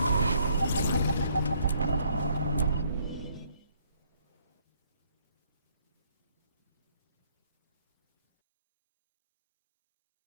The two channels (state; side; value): inverted; both; correlation -0.66